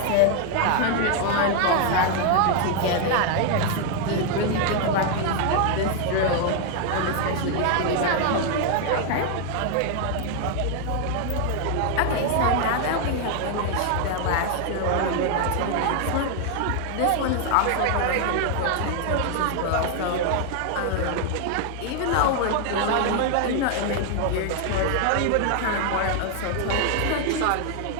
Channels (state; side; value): different; both; correlation 0.00